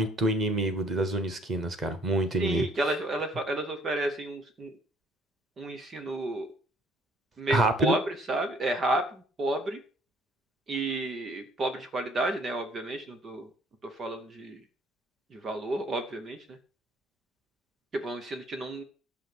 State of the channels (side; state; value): both; normal; correlation 0.60